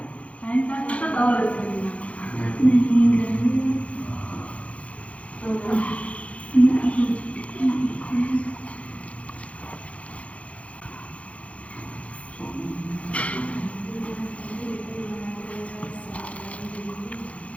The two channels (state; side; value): late; right; 0.064 ms